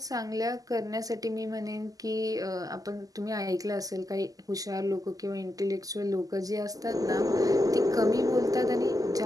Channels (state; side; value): late; left; 0.17 ms